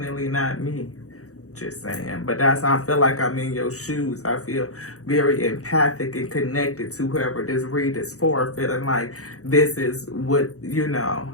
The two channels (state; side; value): late; right; 0.65 ms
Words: not me. Just saying. But that's how I feel like I'm in your shoes. I feel very empathic and connected to whoever this read is for. Feeling like this is what, you know,